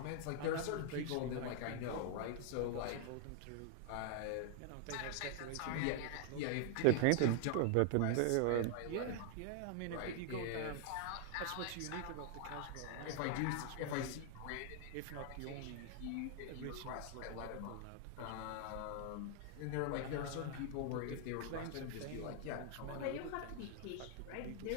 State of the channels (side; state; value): both; different; correlation 0.00